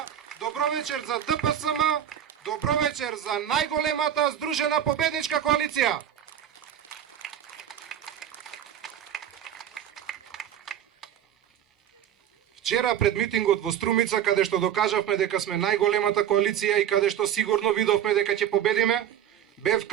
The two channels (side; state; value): left; quieter; 10.1 dB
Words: добро вечер за ДПСМ, добро вечер за најголемата здружена победничка коалиција. Вчера пред митингот во Струмица, каде што докажавме дека сме најголемата коалиција и каде што сигурно видовме дека ќе победиме, бев